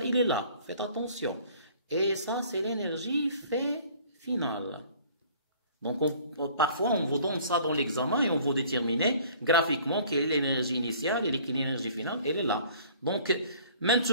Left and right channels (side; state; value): both; inverted; correlation -0.53